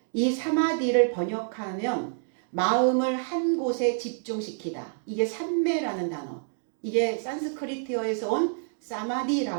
이 사마디를 번역하면 마음을 한 곳에 집중시키다. 이게 삼매라는 단어. 이게 산스크리트어에서 온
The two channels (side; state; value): left; silent; digital silence